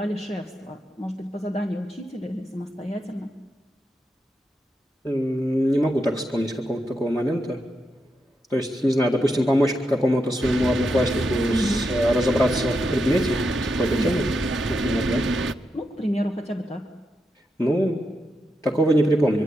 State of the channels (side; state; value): both; normal; correlation 0.85